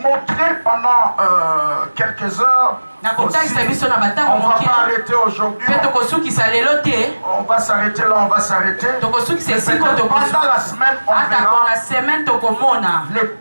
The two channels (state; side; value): inverted; both; correlation -1.00